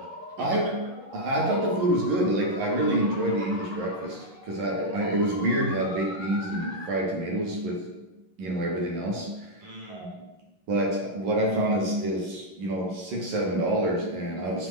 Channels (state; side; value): late; left; 11 ms